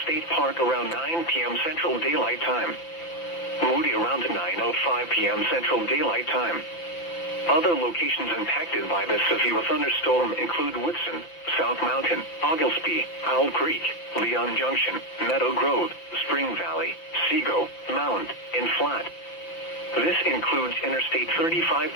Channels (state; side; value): late; right; 5.9 ms